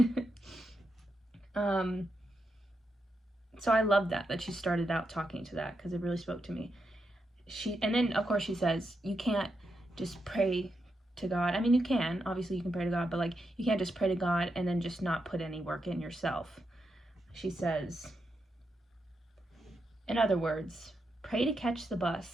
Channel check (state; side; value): normal; both; correlation 0.84